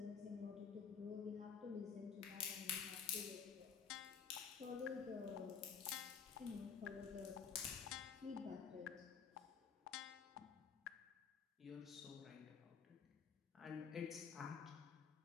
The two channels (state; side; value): quieter; right; 6.5 dB